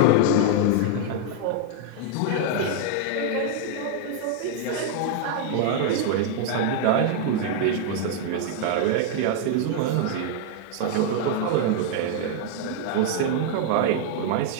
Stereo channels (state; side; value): different; both; correlation 0.00